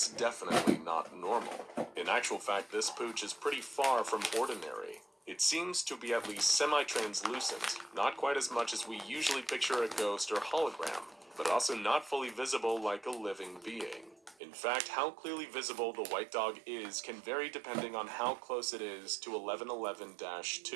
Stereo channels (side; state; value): left; drops out; at 14.4 s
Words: definitely not normal. In actual fact, this pooch is pretty far from ordinary. It seems to be at least semi-translucent, not quite as much as we usually picture a ghost or hologram, but also not fully visible like a living being. In fact, how clearly visible the White Dog is can vary depending on how close it is to